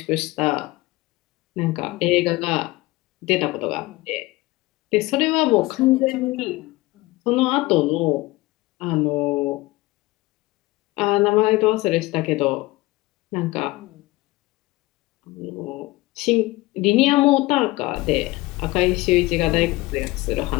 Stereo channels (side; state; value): right; quieter; 20.3 dB